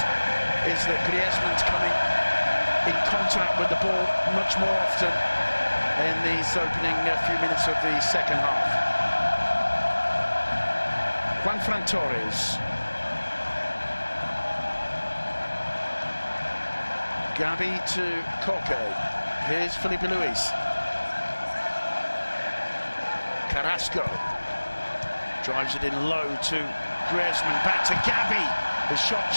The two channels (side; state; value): both; inverted; correlation -1.00